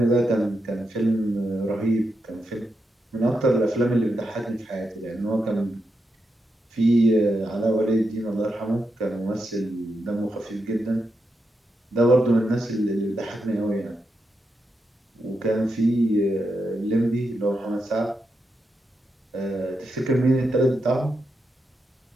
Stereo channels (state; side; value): normal; both; correlation 0.85